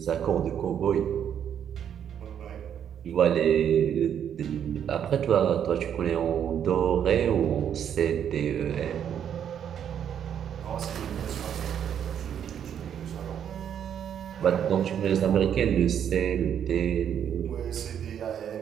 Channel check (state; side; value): quieter; left; 9.0 dB